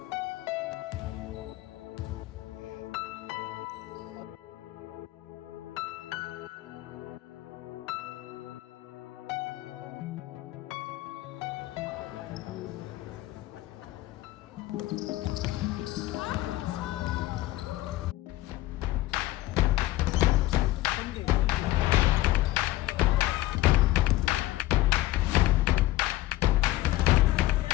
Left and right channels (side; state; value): right; quieter; 16.6 dB